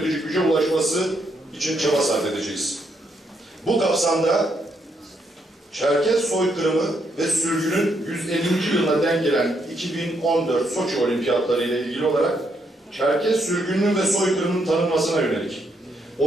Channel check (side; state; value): both; normal; correlation 0.76